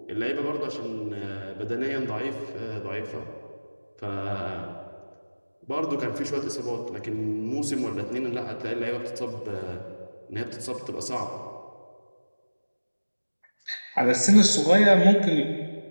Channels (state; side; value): inverted; both; correlation -1.00